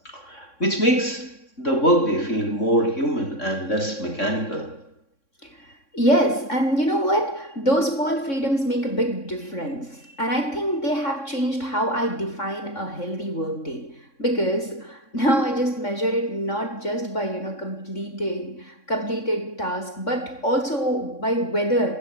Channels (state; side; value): late; right; 3.6 ms